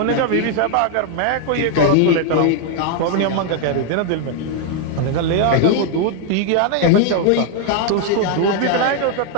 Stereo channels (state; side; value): different; both; correlation 0.00